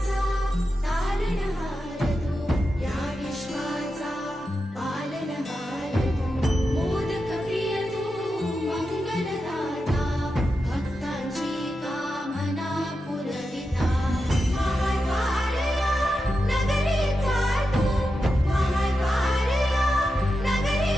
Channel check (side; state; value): both; normal; correlation 0.89